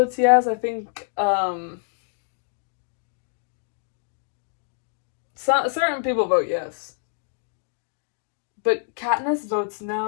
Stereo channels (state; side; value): silent; right; digital silence